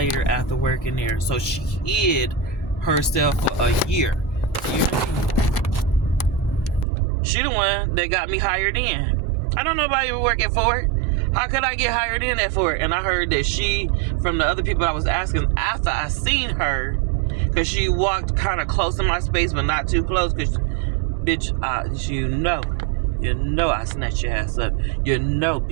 after working there. So she hid herself for a year. She the one that got me hired in. I don't know nobody working for it. How could I get hired in at for it? And I heard that she, from the other people I was asking after I seen her, because she walked kind of close to my space, but not too close, because, bitch, you know I snatched your ass up. You know,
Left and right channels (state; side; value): drops out; left; at 6.9 s